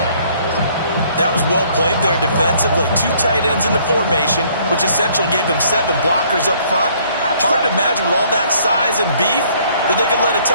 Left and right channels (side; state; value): both; inverted; correlation -0.61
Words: That was well played there defensively. 2 tight ends in the formation, which essentially gave them 7 blockers up front. Hard to imagine with all that size and beef that they could let a